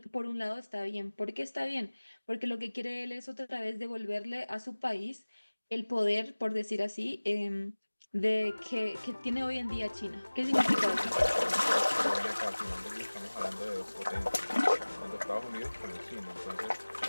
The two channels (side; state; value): both; inverted; correlation -1.00